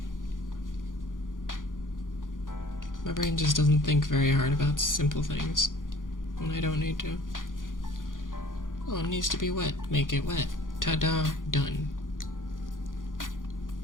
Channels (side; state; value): right; late; 0.89 ms